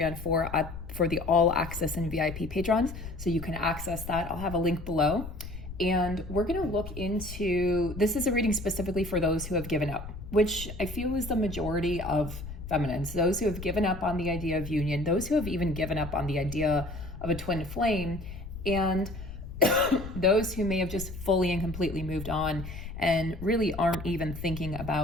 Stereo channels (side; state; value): left; noise; rumble, 10 dB below the sound